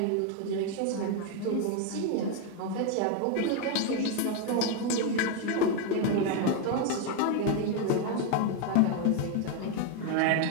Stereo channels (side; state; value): both; different; correlation 0.01